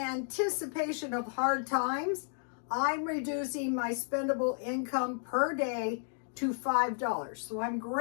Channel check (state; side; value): silent; right; 56 dB below the other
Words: of hard times, I'm reducing my spendable income per day to $5. So I'm